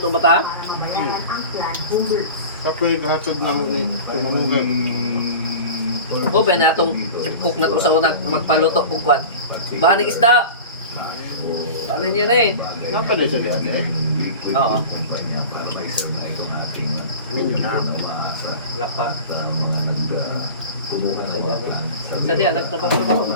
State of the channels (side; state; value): both; inverted; correlation -0.35